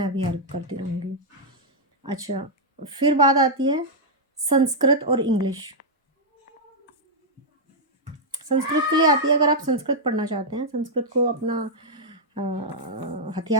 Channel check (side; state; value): both; normal; correlation -0.06